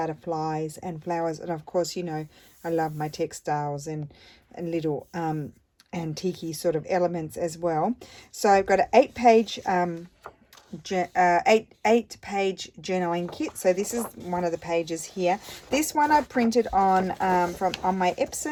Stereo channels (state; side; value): identical; both; correlation 1.00